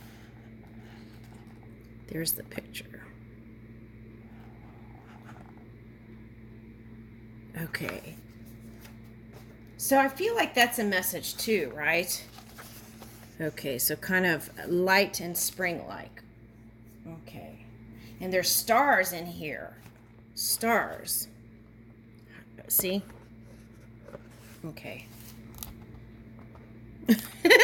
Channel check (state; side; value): identical; both; correlation 1.00